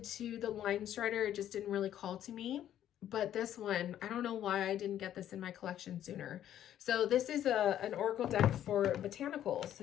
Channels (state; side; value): quieter; right; 11.2 dB